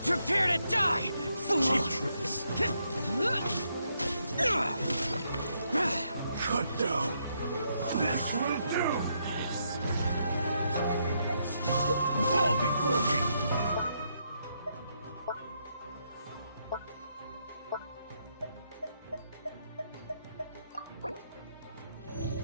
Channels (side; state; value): both; inverted; correlation -0.77